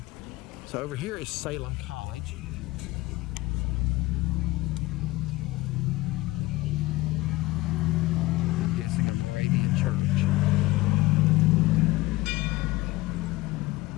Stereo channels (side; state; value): right; quieter; 20.2 dB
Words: So over here is Salem College. I'm guessing a Moravian church.